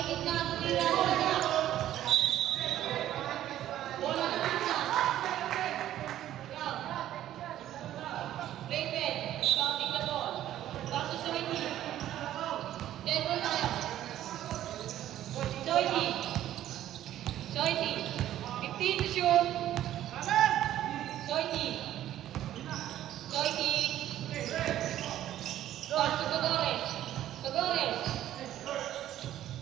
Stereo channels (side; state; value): left; quieter; 12.5 dB